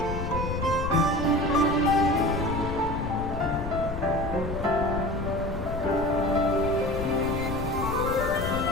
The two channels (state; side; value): noise; left; rumble, 6 dB below the sound